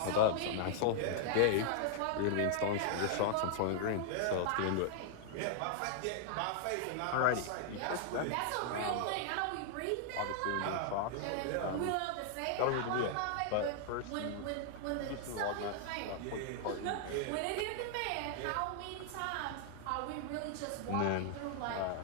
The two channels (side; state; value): both; different; correlation 0.00